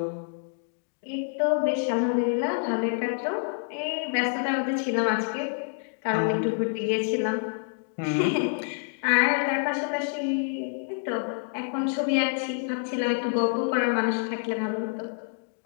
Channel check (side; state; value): right; silent; digital silence